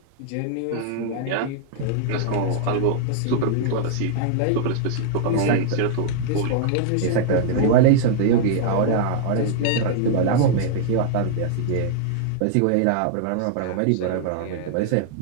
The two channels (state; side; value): different; both; correlation -0.01